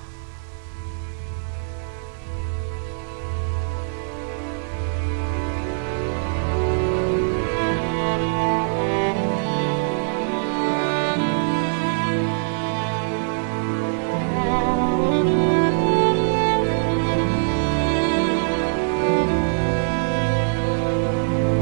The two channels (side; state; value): left; silent; digital silence